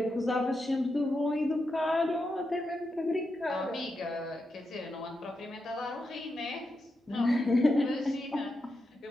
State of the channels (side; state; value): both; normal; correlation 0.86